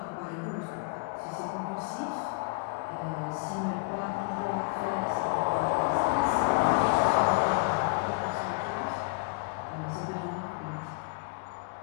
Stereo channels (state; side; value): quieter; right; 33.3 dB